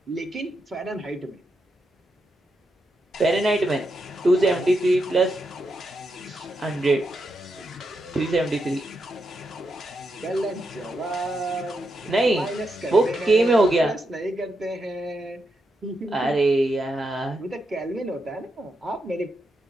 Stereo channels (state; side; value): normal; both; correlation 0.84